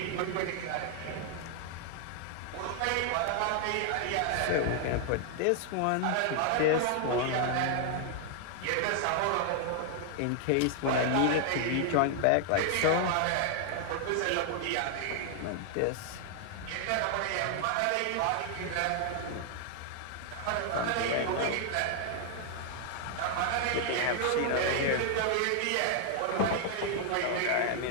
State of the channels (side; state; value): both; different; correlation 0.00